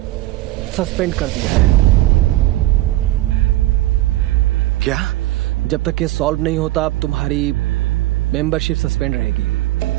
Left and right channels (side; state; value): left; quieter; 16.9 dB